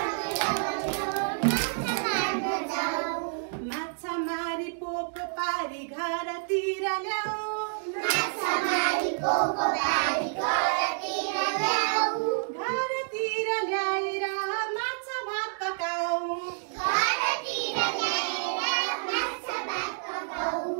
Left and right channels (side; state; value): left; silent; digital silence